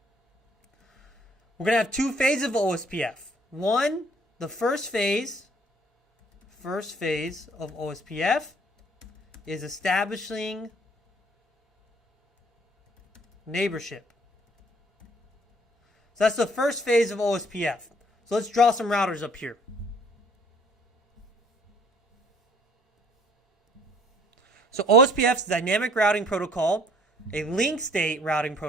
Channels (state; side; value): normal; both; correlation 0.59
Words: We're going to have 2 phases of OSPF. One, the first phase of OSPF is establishing neighborship. So that's the first phase of OSPF. So let's draw some routers up here. So OSPF is a dynamic routing protocol, a link state routing